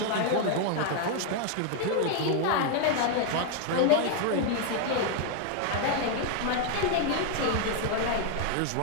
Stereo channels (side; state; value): both; different; correlation 0.00